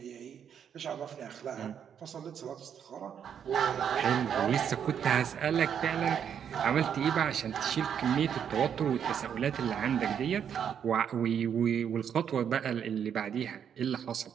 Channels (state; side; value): quieter; left; 8.3 dB